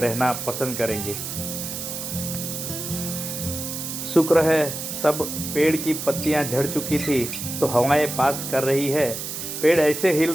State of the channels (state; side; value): noise; right; hiss, 6 dB below the sound